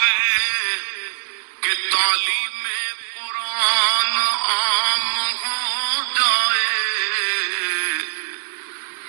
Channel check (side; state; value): left; silent; digital silence